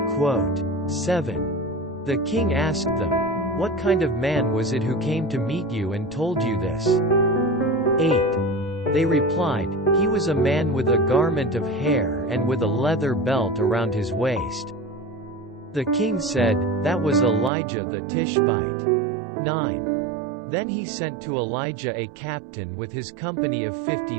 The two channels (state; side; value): drops out; left; at 17.5 s